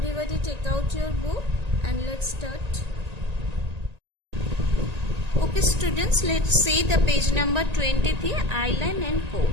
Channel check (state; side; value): late; left; 1.8 ms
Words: take out your book and let's start. Okay students, let's see the page number 23, Island and